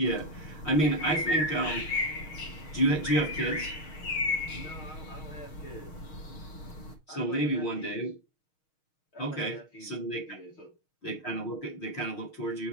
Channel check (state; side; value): late; right; 6.4 ms